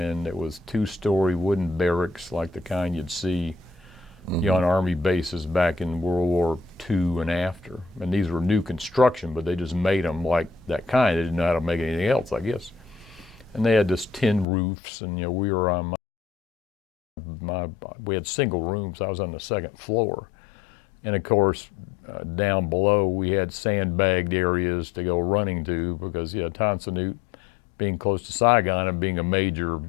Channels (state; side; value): drops out; right; at 14.5 s